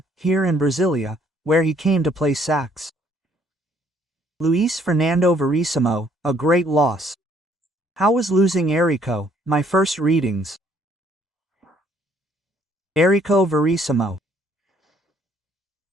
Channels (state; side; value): normal; both; correlation 0.64